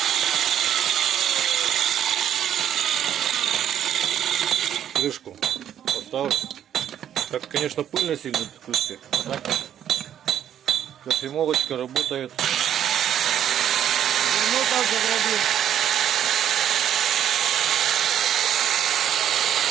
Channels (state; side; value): quieter; left; 10.1 dB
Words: Крышку поставлю. Так, конечно, пыльно сильно в крышке. А так кофемолочка работает. Ну, так заграбим.